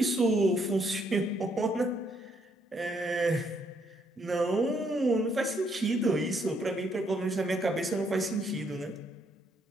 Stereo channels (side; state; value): both; normal; correlation 0.72